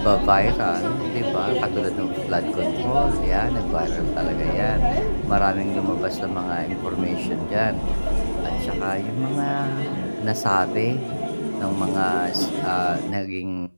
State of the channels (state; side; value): inverted; both; correlation -1.00